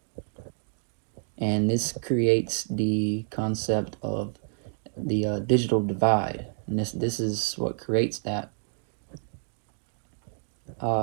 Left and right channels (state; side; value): silent; left; digital silence